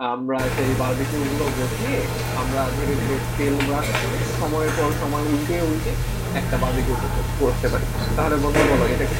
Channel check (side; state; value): both; identical; correlation 1.00